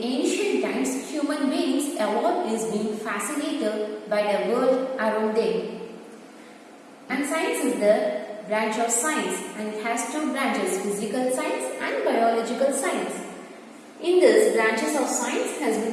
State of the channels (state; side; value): identical; both; correlation 1.00